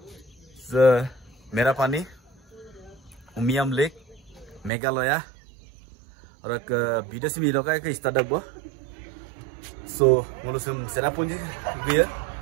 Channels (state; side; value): drops out; left; at 4.7 s